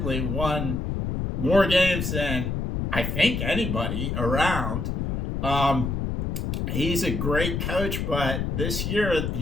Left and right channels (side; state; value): left; noise; rumble, 1 dB below the sound